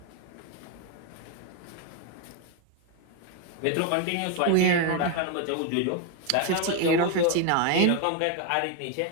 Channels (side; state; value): both; different; correlation 0.01